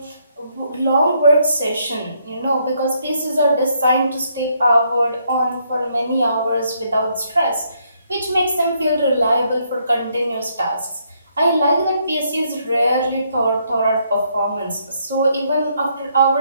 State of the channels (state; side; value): inverted; both; correlation -0.73